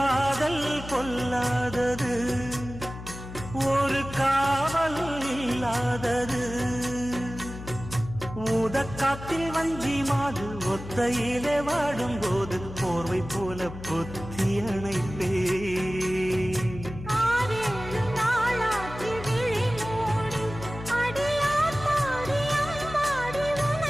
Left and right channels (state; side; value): noise; left; hum, 12 dB below the sound